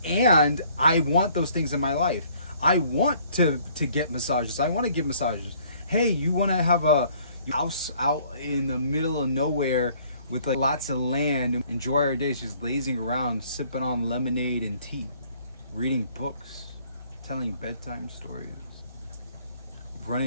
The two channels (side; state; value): both; inverted; correlation -0.59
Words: and I want those things in my life. I want to get massages. I want to give massages. Hey, you want to have a house out in the middle of nowhere with like lots of land, enjoy our days just lazing around, sipping on lemonade and tea, reading books, telling bedtime stories,